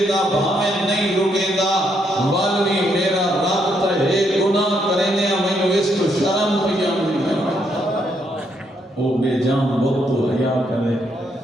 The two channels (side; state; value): both; normal; correlation 0.75